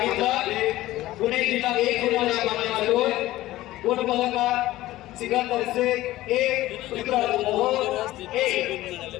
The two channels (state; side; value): quieter; right; 16.2 dB